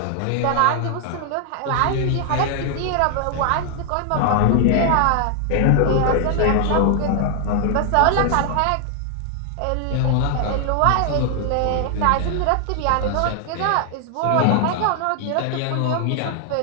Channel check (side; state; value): both; different; correlation 0.00